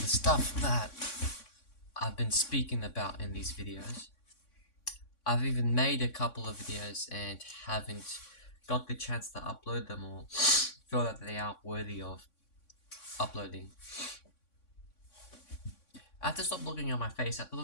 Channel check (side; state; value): right; late; 3.6 ms